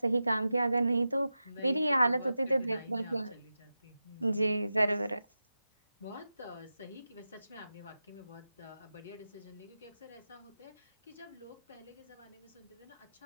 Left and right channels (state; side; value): inverted; both; correlation -0.93